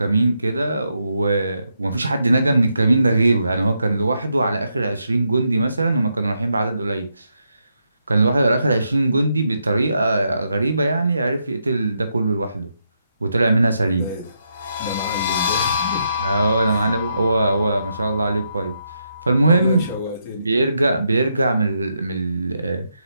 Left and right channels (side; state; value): both; inverted; correlation -0.81